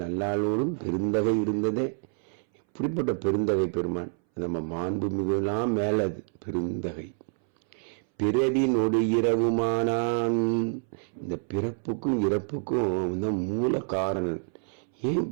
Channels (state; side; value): silent; left; 60 dB below the other